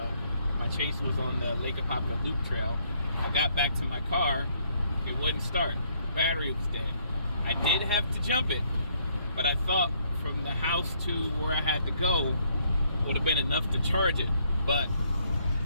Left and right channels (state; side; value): inverted; both; correlation -0.69